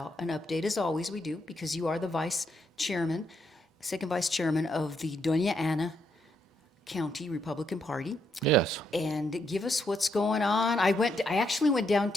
an update, as always we do, because you are the second vice chairman of the Doña Ana County Republican Party. Yes. And give us what's going on. I actually went down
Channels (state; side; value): normal; both; correlation 0.77